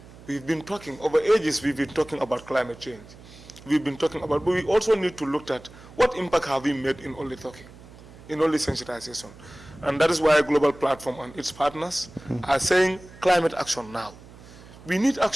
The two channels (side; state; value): right; noise; hum, 20 dB below the sound